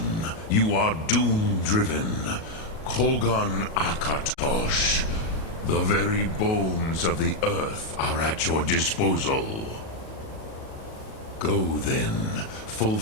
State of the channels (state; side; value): late; right; 37 ms